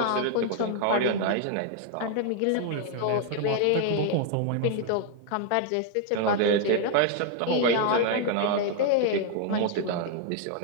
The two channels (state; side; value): different; both; correlation 0.00